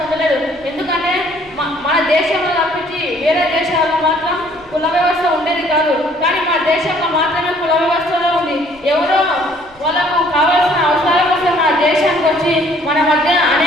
ఉండలేదు. ఎందుకంటే మన దేశంలో తప్పించి వేరే దేశాల్లో మాత్రం కుల వ్యవస్థ ఉండేది కాదు. కానీ మన దేశంలో మాత్రమే కుల వ్యవస్థలో ఉంది. ఎవరో వాళ్ళకు కావాల్సిన అవసరాల కోసం మన దేశానికి వచ్చి మన మధ్య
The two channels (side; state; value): left; noise; rumble, 29 dB below the sound